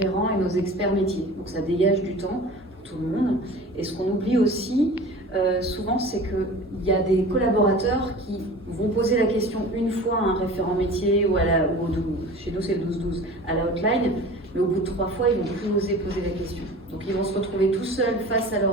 et nos experts métiers. Donc ça dégage du temps pour tout le monde. Et ce qu'on oublie aussi, souvent, c'est qu'il y a des collaborateurs qui vont poser la question une fois à un référent métier ou chez nous c'est le 12-12, à la hotline, mais au bout de 3 fois, ils ne vont plus oser poser la question. Donc ils vont se retrouver tout seuls face à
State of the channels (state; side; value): normal; both; correlation 0.39